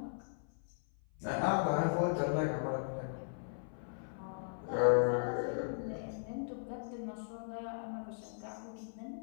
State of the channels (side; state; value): right; silent; 53 dB below the other